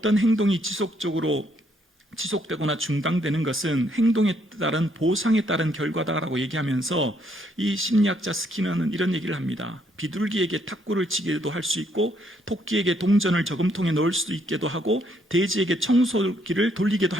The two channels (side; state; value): both; normal; correlation 0.71